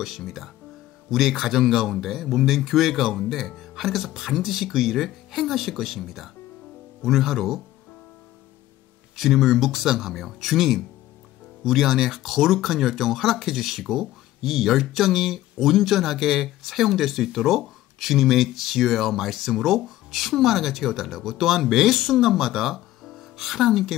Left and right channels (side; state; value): right; quieter; 15.1 dB